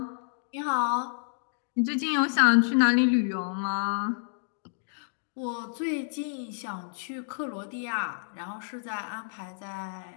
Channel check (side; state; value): right; silent; digital silence